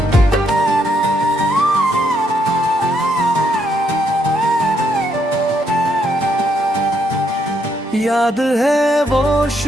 याद है वो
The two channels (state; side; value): normal; both; correlation 0.75